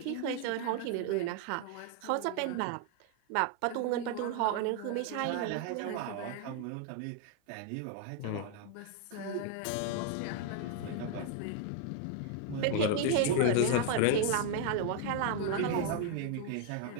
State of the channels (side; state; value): both; different; correlation 0.00